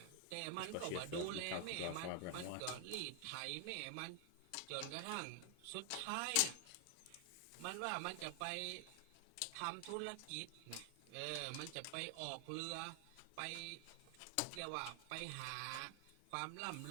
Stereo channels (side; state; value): both; different; correlation 0.00